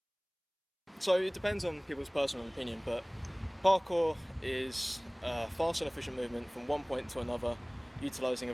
So it depends on people's personal opinion, but parkour is a fast and efficient movement from one point to another, utilising a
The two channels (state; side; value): identical; both; correlation 1.00